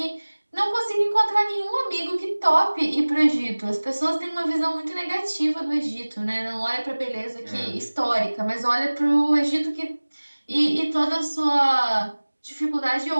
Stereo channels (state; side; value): inverted; both; correlation -1.00